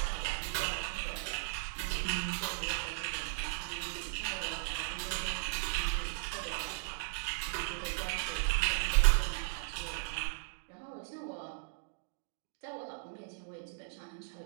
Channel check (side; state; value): left; silent; digital silence